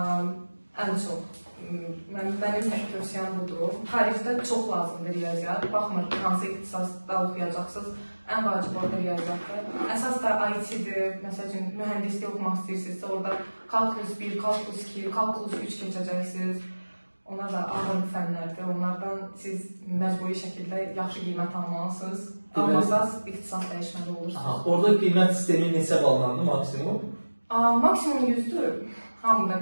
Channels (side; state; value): both; inverted; correlation -1.00